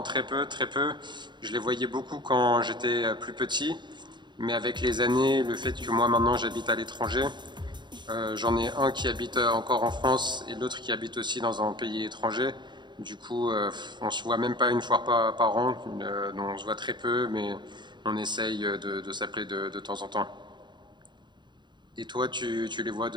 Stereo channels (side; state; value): left; late; 0.22 ms